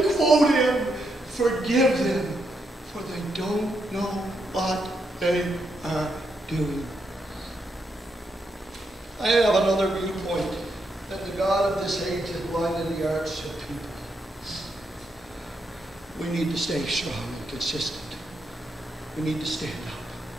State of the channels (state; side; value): normal; both; correlation 0.81